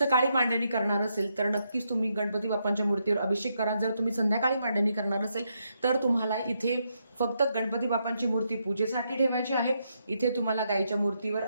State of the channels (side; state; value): both; inverted; correlation -0.80